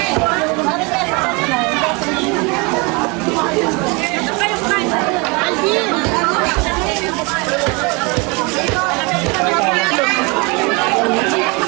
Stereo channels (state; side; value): quieter; left; 28.7 dB